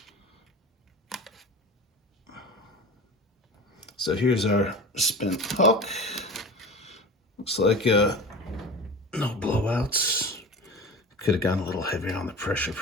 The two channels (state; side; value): normal; both; correlation 0.33